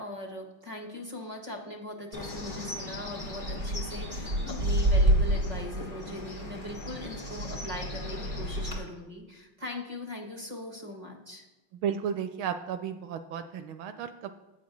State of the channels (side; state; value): left; late; 5.4 ms